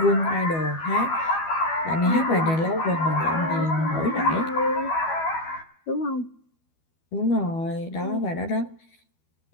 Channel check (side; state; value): right; late; 12 ms